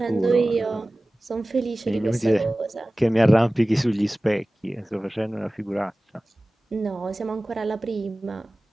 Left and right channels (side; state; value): both; normal; correlation 0.97